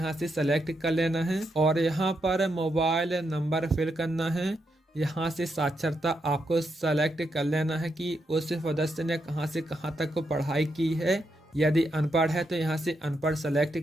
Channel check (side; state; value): both; normal; correlation 0.82